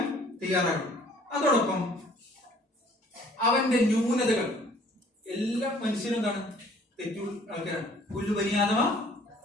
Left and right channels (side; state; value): both; normal; correlation 0.56